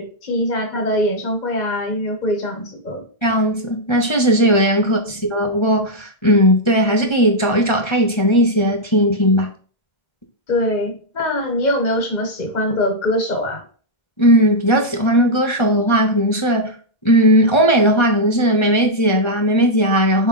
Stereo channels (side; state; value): right; late; 1.3 ms